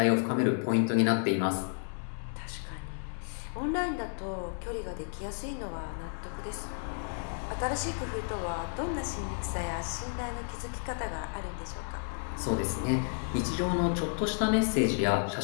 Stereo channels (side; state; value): right; silent; digital silence